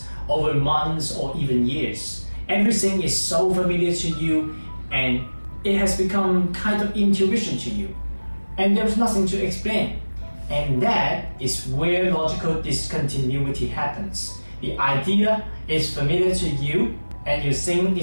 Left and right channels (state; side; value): inverted; both; correlation -1.00